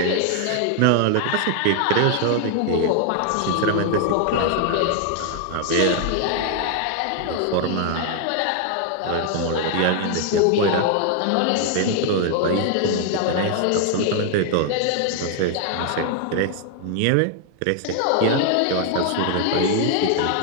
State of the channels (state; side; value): different; both; correlation 0.00